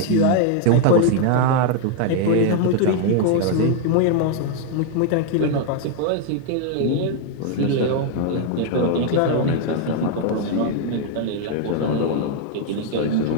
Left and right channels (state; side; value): different; both; correlation 0.00